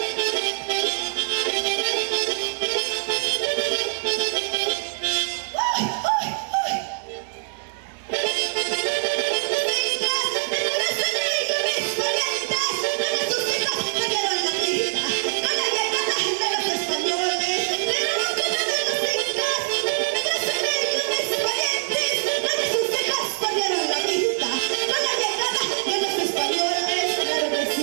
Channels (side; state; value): left; silent; digital silence